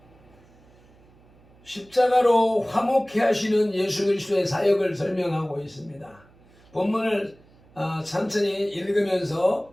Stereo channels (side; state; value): right; noise; hum, 28 dB below the sound